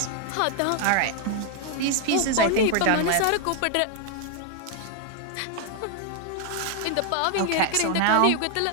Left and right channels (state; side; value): different; both; correlation 0.00